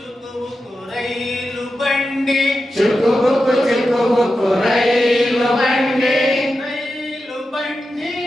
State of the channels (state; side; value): normal; both; correlation 0.90